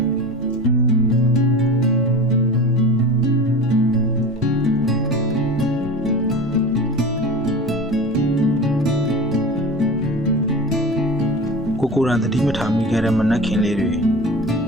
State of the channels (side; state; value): both; normal; correlation 0.32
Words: ကိုယ်တိုင်တတိမထားမိခဲ့တဲ့မနက်ခင်းလေးတွေ